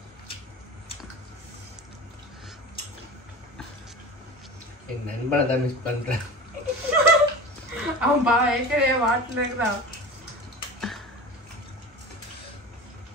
என் நண்பனை தான் மிஸ் பண்றேன். அவன் ஏற்கனவே வாட்டில் இருக்கிறான்.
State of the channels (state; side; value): normal; both; correlation 0.33